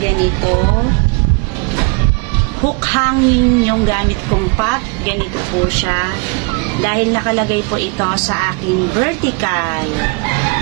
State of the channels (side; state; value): left; quieter; 32.7 dB